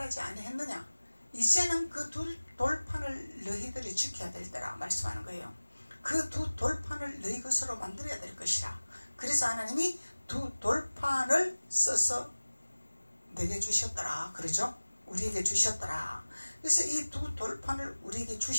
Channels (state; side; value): inverted; both; correlation -1.00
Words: 아니했느냐, 이제는 그 두 돌판을 너희들이 지켜야 될 때라 말씀하는 거예요. 그 두 돌판을 너희 것으로 만들어야 될 것이라. 그래서 하나님이 두 돌판을 써서 내게 주셨더라 그러죠. 우리에게 주셨더라. 그래서 이 두 돌판을 우리에게